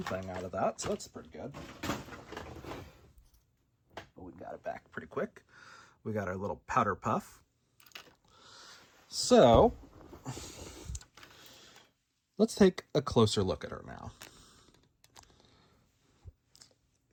thing out of that, so that's pretty good. But we got it back pretty quick. We got our little powder puff. So let's take a closer look at her now.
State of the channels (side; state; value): both; identical; correlation 1.00